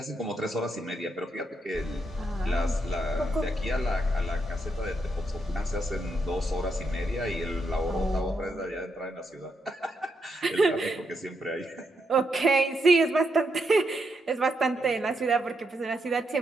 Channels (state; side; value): normal; both; correlation 0.80